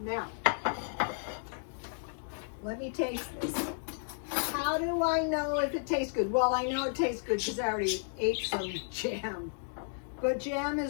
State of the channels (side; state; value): right; silent; digital silence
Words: let me taste this. How do I know if it tastes good? Well, I know it tastes good because I already ate some jam. But jam